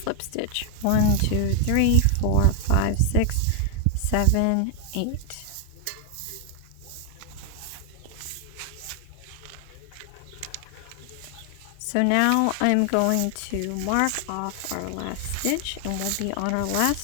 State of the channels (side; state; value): both; different; correlation 0.00